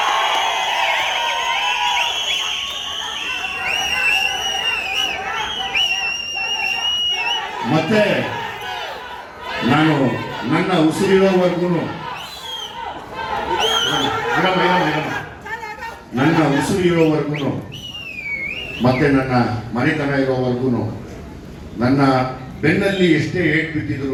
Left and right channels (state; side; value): identical; both; correlation 1.00